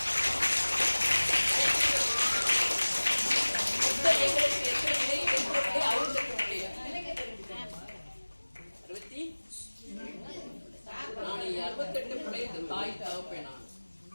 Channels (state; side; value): inverted; both; correlation -1.00